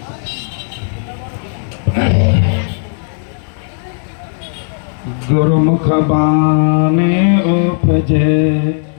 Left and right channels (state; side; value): silent; right; 70 dB below the other